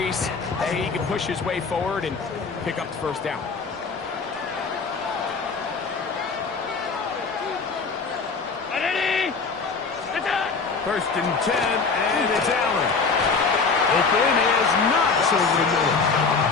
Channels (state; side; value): quieter; right; 4.7 dB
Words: that he can push his way forward and pick up the first down. First and 10, and it's Allen. Open is Knox over the middle.